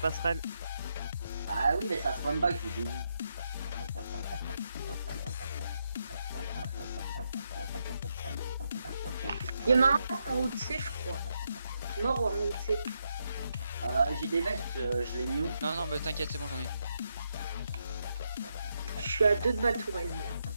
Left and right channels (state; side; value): inverted; both; correlation -0.81